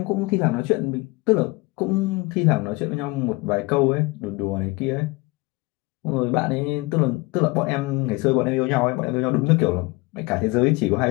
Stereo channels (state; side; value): quieter; right; 24.0 dB